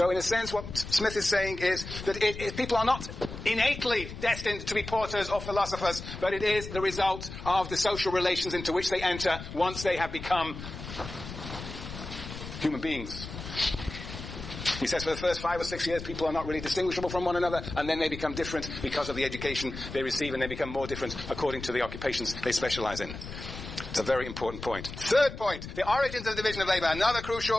in a sense, what Smith is saying is that people are not innately destined to be porters or philosophers, but it is the result of the social relations into which they enter once they have become human beings. He says for the first 5 or 6 years, people are not really distinguishable from one another, and then they become different because of the education they receive, and they become more different according to the occupations they specialize in. It's a very important point. Third point, the origins of the division of labour. Another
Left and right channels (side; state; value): left; noise; rumble, 10 dB below the sound